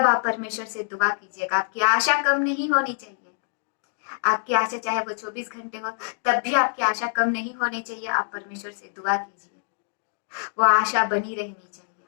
आप परमेश्वर से दुआ कीजिएगा। आपकी आशा कम नहीं होनी चाहिए। आपकी आशा चाहे वो 24 घंटे हो, तब भी आपकी आशा कम नहीं होनी चाहिए। आप परमेश्वर से दुआ कीजिए, वो आशा बनी रहनी चाहिए।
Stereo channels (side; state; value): right; silent; digital silence